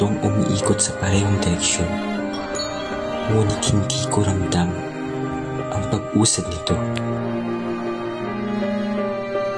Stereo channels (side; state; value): both; identical; correlation 1.00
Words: umiikot sa parehong direksyon. Ngunit hindi ko ramdam ang pag-usad nito.